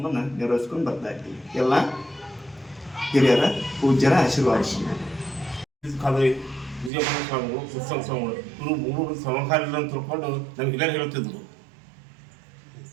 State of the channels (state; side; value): drops out; left; at 6.9 s